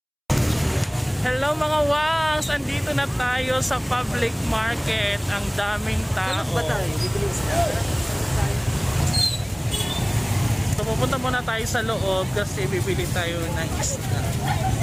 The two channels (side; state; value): both; identical; correlation 1.00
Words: Hello mga wangs, andito na tayo sa public market. Ang daming tao. Ano ba tayo? Bibilis na. So pupunta muna tayo sa loob kasi bibili tayo ng isda.